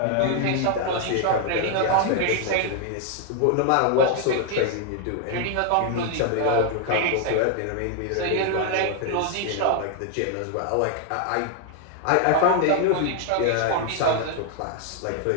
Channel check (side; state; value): both; different; correlation 0.00